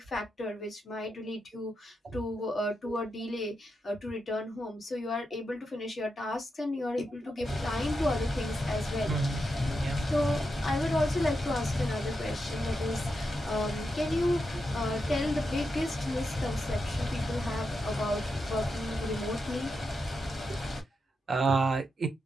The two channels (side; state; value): both; normal; correlation 0.86